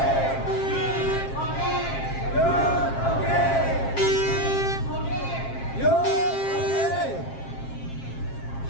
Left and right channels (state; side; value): late; right; 7.5 ms